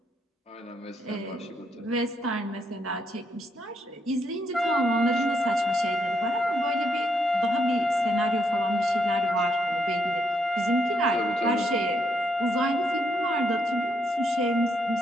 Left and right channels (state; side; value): normal; both; correlation 0.76